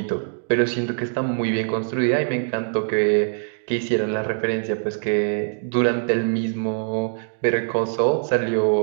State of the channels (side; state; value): left; silent; 64 dB below the other